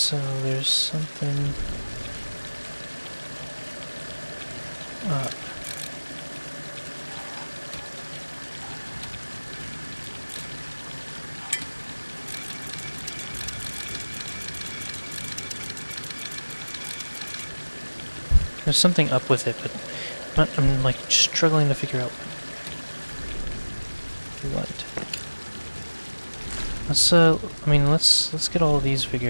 there's something... up. There's something up with it, but I'm like struggling to figure out what. Let's I mean let's get all of these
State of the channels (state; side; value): inverted; both; correlation -1.00